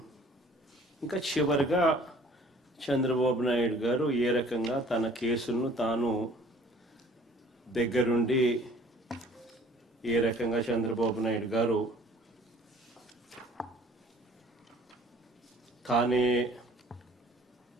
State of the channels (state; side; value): normal; both; correlation 0.53